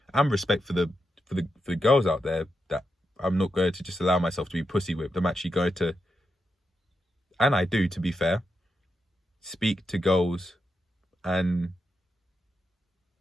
and respect for the girls out there, that I'm not going to just allow myself to be pussy whipped. I'm actually going to, and I do, to be fair, speak to girls and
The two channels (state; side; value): normal; both; correlation 0.86